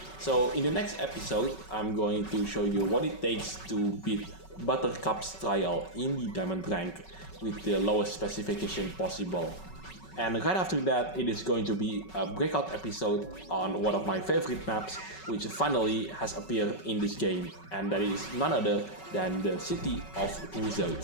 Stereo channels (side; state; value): right; late; 5.3 ms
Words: So in the next episode, I'm going to show you what it takes to beat Buttercup's trial in the Diamondrank with the lowest specification possible. And right after that, it is going to be a breakout episode on one of my favorite maps, which finally has appeared in this game, and that is none other than the City of